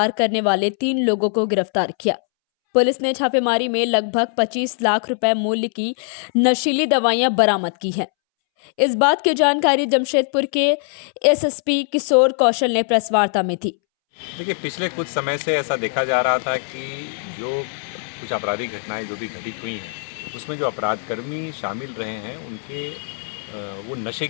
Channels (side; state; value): right; silent; 65 dB below the other